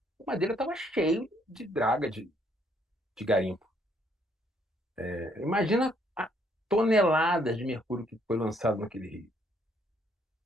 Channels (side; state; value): both; normal; correlation 0.68